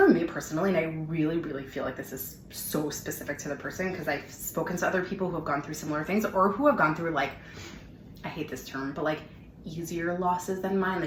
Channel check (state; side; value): identical; both; correlation 1.00